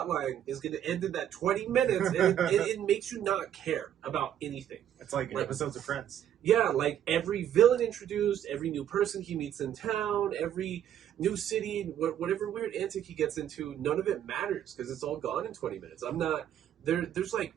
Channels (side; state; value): left; quieter; 10.4 dB